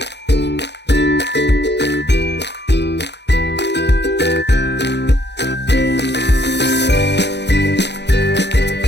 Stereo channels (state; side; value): late; right; 0.50 ms